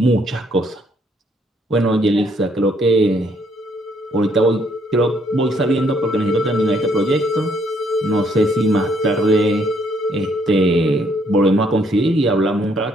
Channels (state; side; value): normal; both; correlation 0.69